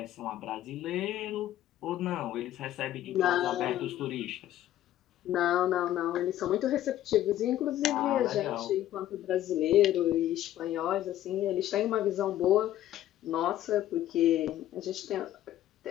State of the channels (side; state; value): right; quieter; 13.0 dB